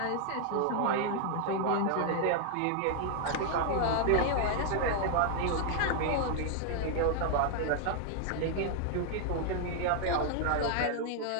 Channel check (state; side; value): different; both; correlation 0.00